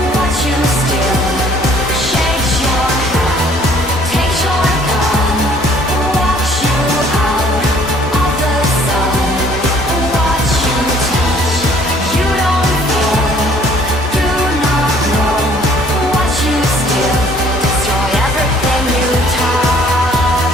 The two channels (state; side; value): normal; both; correlation 0.58